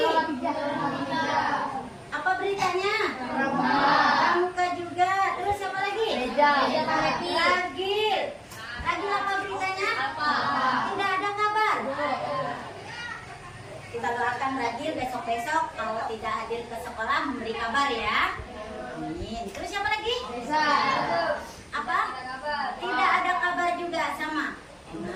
Apa beritanya? Pramuka juga. Terus siapa lagi? Ragil. Ragil apa beritanya? Tidak ada kabar. Kita doakan Ragil besok-besok kalau tidak hadir ke sekolah memberi kabar ya. Amin. Terus siapa lagi? Apa? Tidak ada kabar juga sama.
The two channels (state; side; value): identical; both; correlation 1.00